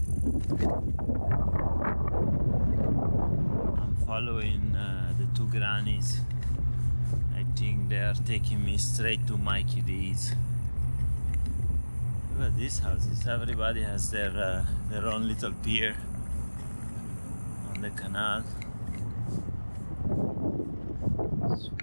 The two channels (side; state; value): both; inverted; correlation -1.00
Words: I'm following the two grannies. I think they are taking me straight to Mikey D's. Look at these houses. Everybody has their own little pier on the canal.